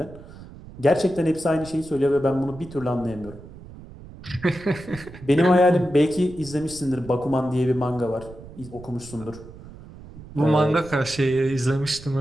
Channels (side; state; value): right; noise; rumble, 17 dB below the sound